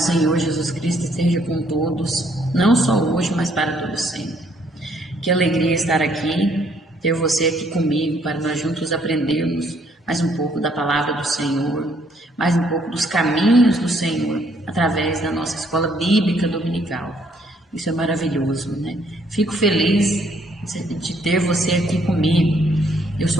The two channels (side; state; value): both; normal; correlation 0.67